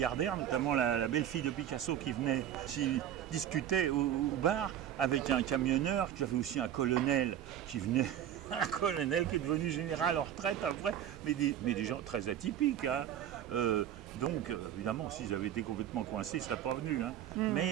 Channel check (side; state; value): left; quieter; 10.6 dB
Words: notamment la belle-fille de Picasso qui venait, qui discutait au bar avec un camionneur, tu avais aussi un colonel qui venait, un colonel qui est devenu général en retraite après, mais des gens très atypiques. Donc, évidemment, s'ils avaient été complètement coincés, ils ne seraient pas venus.